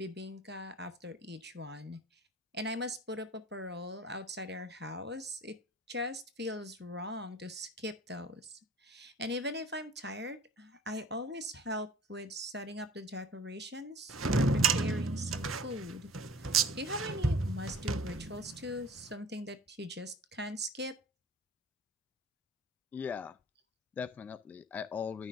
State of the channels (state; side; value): normal; both; correlation 0.45